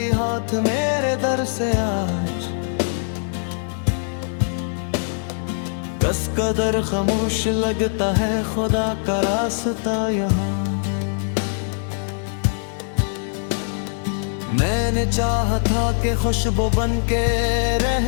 हाथ मेरे दर से आज। कस कदर खामोश लगता है खुदा का रास्ता यहाँ। मैंने चाहा था कि खुशबू बन के रह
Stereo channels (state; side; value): silent; right; 64 dB below the other